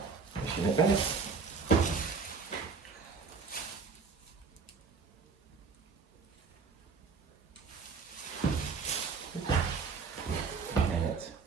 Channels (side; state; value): left; quieter; 5.0 dB